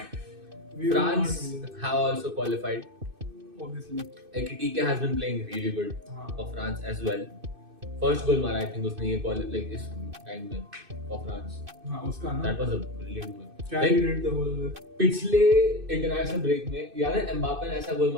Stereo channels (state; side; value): late; left; 2.6 ms